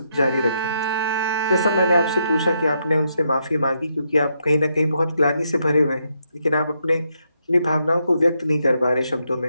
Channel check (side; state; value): both; inverted; correlation -0.79